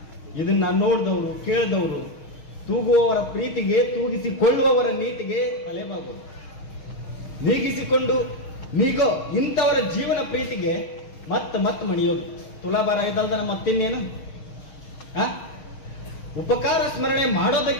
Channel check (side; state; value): right; late; 6.4 ms